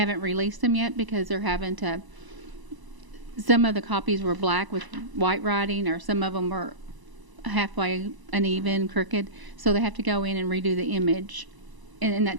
released them yet because they're having to. Some of the copies were black with white writing, or some of them were halfway uneven, crooked. So they have to go in and redo the image. And that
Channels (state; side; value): late; left; 1.0 ms